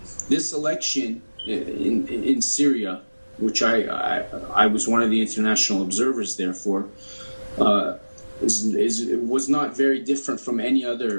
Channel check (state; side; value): inverted; both; correlation -1.00